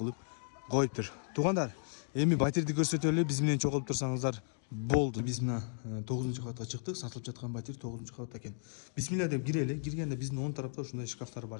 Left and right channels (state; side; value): silent; right; digital silence